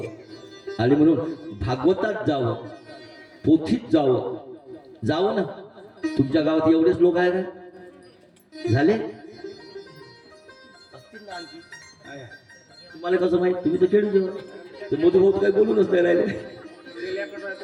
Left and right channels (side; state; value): both; identical; correlation 1.00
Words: आणि म्हणून भागवतात जावं पोथीत जावं ना तुमच्या गावात एवढेच लोक आहेत ना झाले तुम्हाला कसं माहित तुम्ही तर खेळून जेव्हा मधुभाऊ काही बोलूनच नाही राहिले